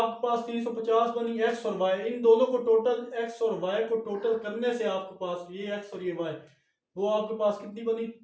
पास 350 बनी एक्स और वाई, इन दोनों को टोटल एक्स और वाई को टोटल करने से आपके पास ये एक्स और ये वाई, वो आपके पास कितनी बनी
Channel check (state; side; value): identical; both; correlation 1.00